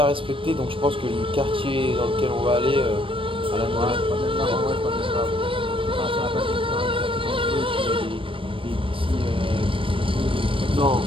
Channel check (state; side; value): late; left; 0.25 ms